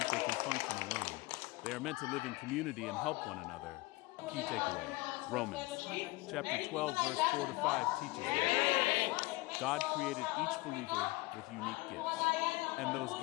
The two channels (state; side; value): quieter; right; 21.7 dB